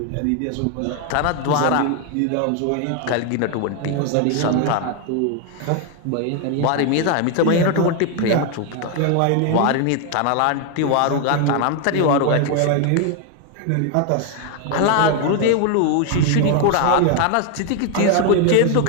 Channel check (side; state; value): both; different; correlation 0.01